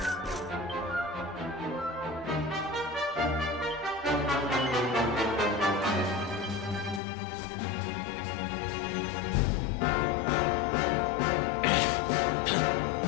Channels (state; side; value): drops out; right; at 7.0 s